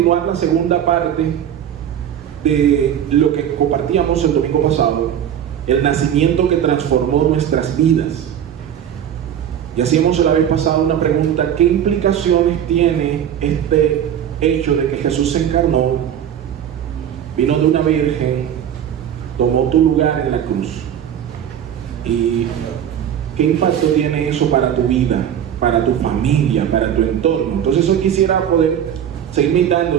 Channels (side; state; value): left; quieter; 9.6 dB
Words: la segunda parte de lo que compartíamos el domingo pasado, el nacimiento que transformó nuestras vidas. Y hacíamos la vez pasada una pregunta: ¿qué implicaciones tiene este hecho de que Jesús se encarnó, vino de una virgen, tomó tu lugar en la cruz? ¿Y qué impacto tiene eso para tu vida, para tu familia, para tu entorno? Entonces hoy quisiera poder seguir meditando